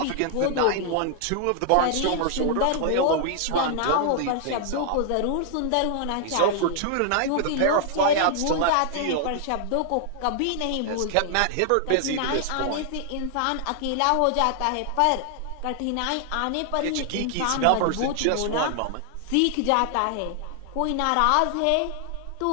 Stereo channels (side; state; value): both; different; correlation 0.00